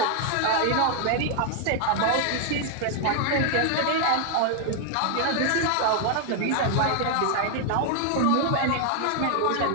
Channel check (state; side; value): different; both; correlation 0.00